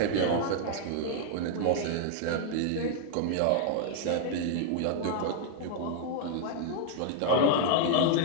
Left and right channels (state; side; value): different; both; correlation 0.00